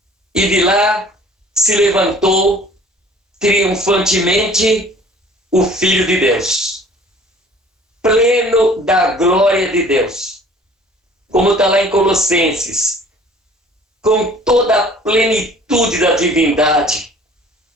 e de lá se levantou triunfantemente o Filho de Deus, pleno da glória de Deus, como está lá em Colossenses, com toda a plenitude da divindade,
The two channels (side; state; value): both; normal; correlation 0.51